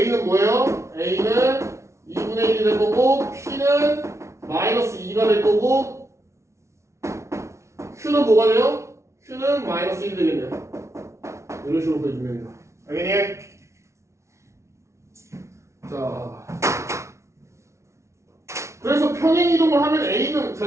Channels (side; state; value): left; late; 0.14 ms